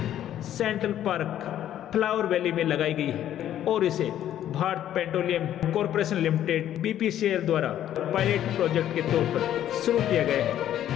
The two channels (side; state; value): right; quieter; 11.4 dB